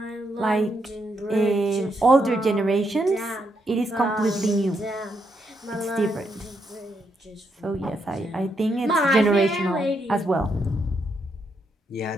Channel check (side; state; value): both; normal; correlation 0.78